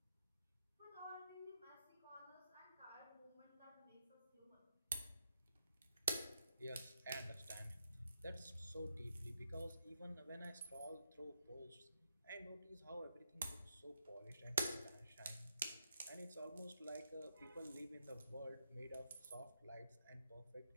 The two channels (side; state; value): both; inverted; correlation -0.82